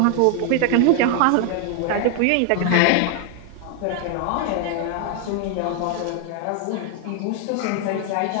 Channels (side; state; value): both; different; correlation 0.00